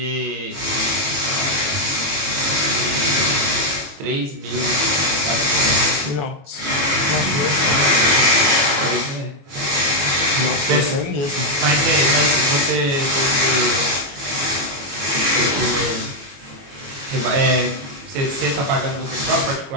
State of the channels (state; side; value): late; left; 22 ms